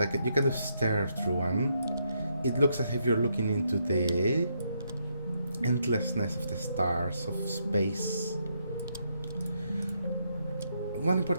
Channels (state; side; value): inverted; both; correlation -0.78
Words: you can just stare through, and it looks as if you're looking into the endlessness of the stars, of space. One